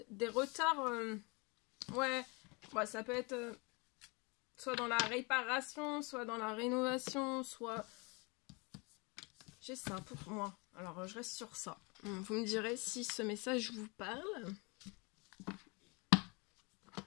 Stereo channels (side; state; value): right; quieter; 29.8 dB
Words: retards. Ouais, ça peut être soit dans la réparation, soit dans la rénovation, soit... J'ai ça pour moi. Alors, je reste sur ça. Vous me direz si ce message vous parle.